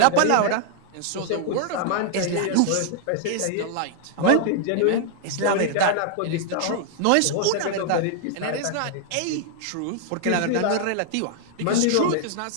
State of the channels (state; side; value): different; both; correlation 0.00